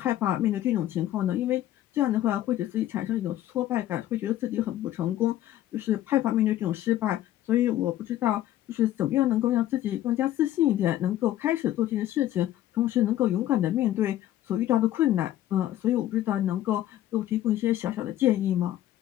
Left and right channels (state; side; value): quieter; right; 13.2 dB